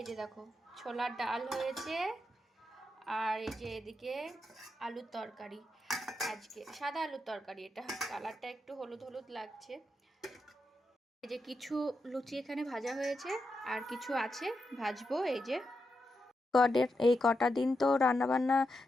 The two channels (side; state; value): both; normal; correlation 0.85